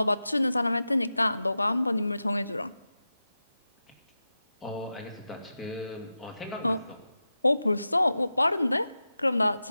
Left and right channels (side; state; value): both; inverted; correlation -0.93